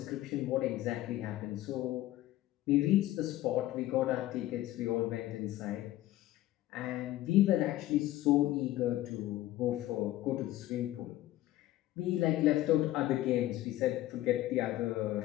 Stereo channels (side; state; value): right; quieter; 15.4 dB